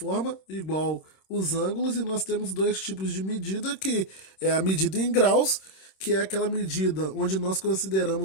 igual os ângulos, e nós temos dois tipos de medida, que é a medida em graus, que é aquela medida onde nós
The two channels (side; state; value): right; late; 26 ms